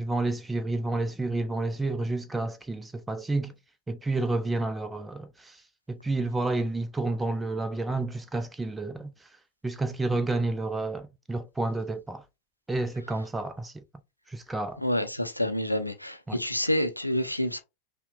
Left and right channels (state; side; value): normal; both; correlation 0.44